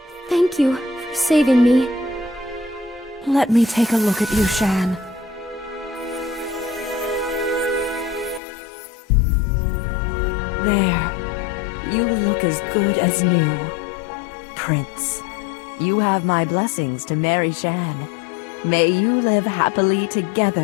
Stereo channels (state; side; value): drops out; right; at 8.4 s